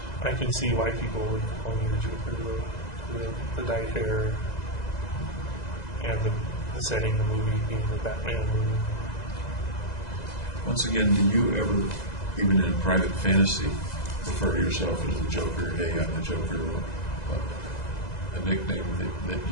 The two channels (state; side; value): late; right; 2.0 ms